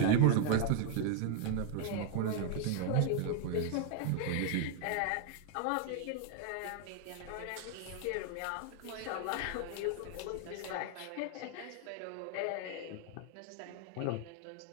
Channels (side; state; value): both; different; correlation 0.00